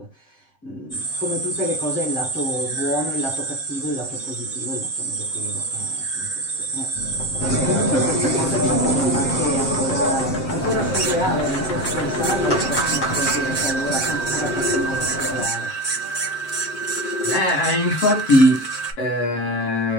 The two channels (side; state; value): right; late; 7.6 ms